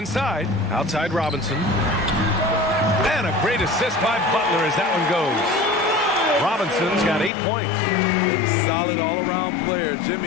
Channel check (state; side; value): drops out; right; at 7.3 s